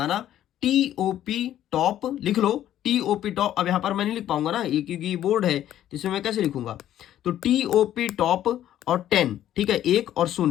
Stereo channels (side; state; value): right; quieter; 11.9 dB